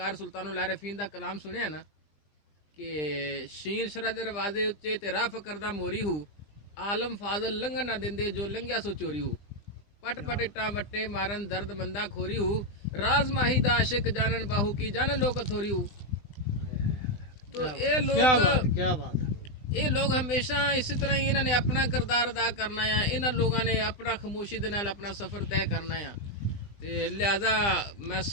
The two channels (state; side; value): late; right; 20 ms